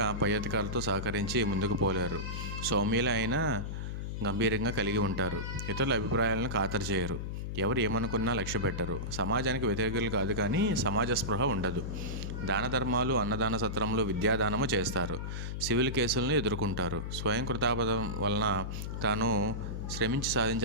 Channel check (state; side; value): noise; left; hum, 4 dB below the sound